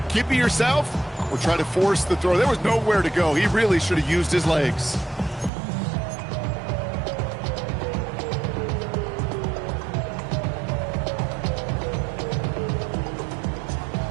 Keep it yourself or try to force the throw. There was nowhere to go. He really should have used his legs.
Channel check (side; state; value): left; drops out; at 5.5 s